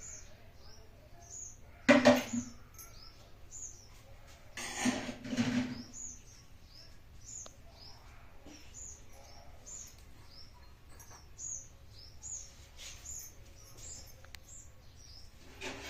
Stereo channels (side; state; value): both; identical; correlation 1.00